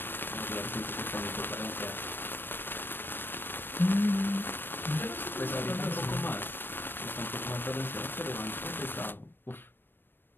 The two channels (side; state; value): right; late; 0.096 ms